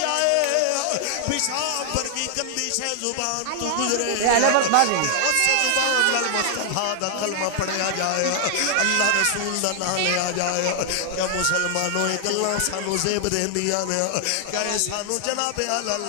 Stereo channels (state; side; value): different; both; correlation 0.00